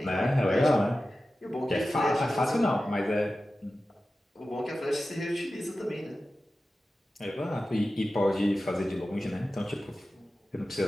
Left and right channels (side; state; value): both; normal; correlation 0.94